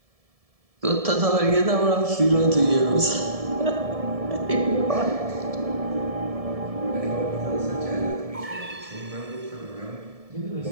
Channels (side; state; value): left; late; 1.7 ms